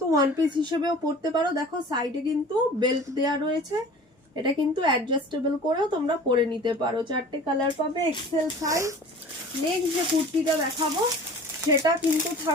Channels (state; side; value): normal; both; correlation 0.43